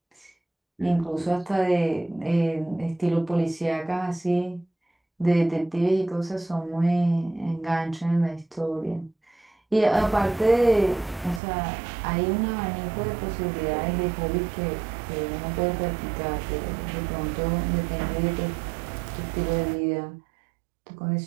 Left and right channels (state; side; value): drops out; left; at 11.4 s